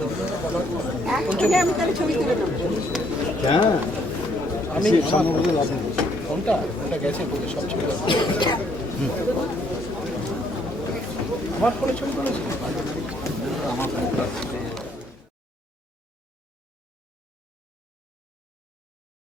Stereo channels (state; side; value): normal; both; correlation 0.68